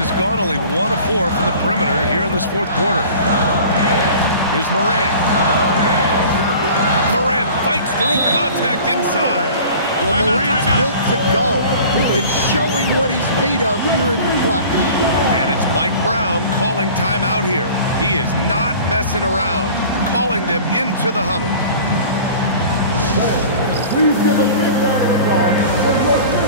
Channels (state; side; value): inverted; both; correlation -0.43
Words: gone only 1 of 4 from the perimeter here in this fourth quarter. Here's Morant. Morant fights through contact inside. Well, Morant's built to go and showing what he's made of here in the clutch. And it's Mike Brown calling timeout here. He is not messing around, calling them into the huddle. Please give a big round of applause for your